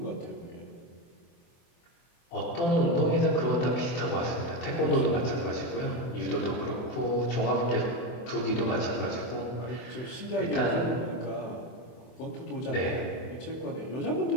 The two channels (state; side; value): late; right; 24 ms